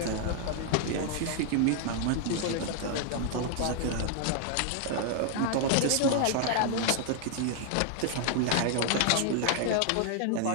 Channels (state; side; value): different; both; correlation 0.00